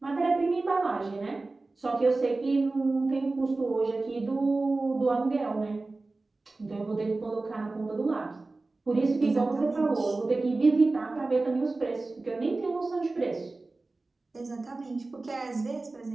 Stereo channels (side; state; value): left; quieter; 3.4 dB